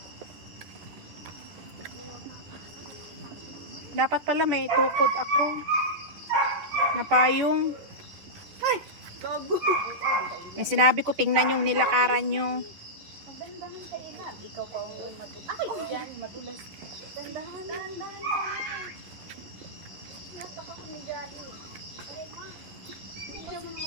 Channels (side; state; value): left; late; 10 ms